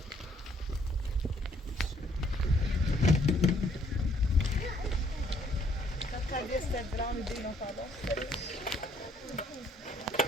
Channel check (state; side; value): normal; both; correlation 0.66